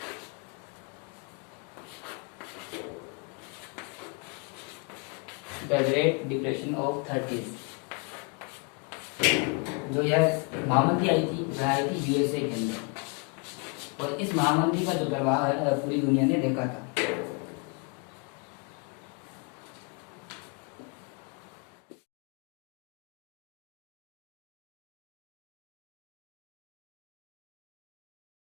of 30s। जो यह महामंदी आई थी वह आई थी यूएसए के अंदर, और इस महामंदी का जो प्रभाव है पूरी दुनिया ने देखा था।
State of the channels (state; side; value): quieter; right; 32.3 dB